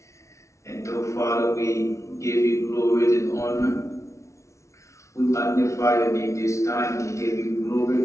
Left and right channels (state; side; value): late; right; 0.14 ms